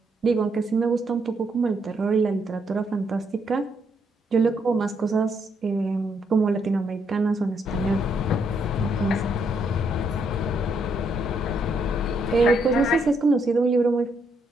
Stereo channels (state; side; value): normal; both; correlation 0.75